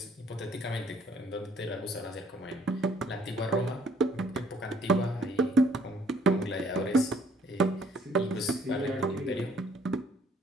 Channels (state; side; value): normal; both; correlation 0.62